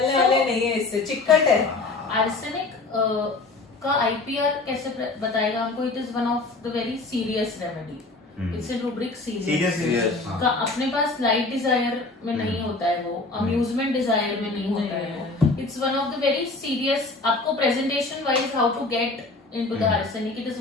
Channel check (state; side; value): quieter; right; 3.4 dB